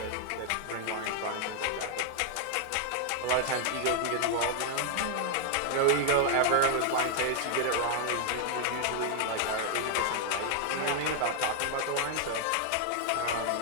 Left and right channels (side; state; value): both; different; correlation 0.00